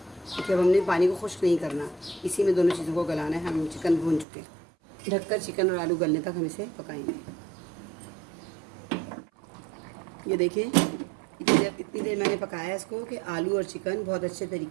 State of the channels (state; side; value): drops out; left; at 4.2 s